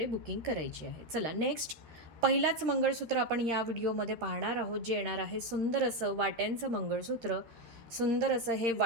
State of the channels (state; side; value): late; left; 13 ms